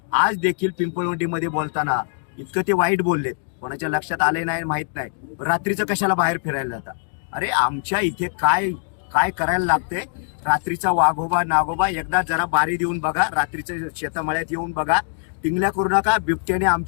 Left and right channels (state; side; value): silent; right; 62 dB below the other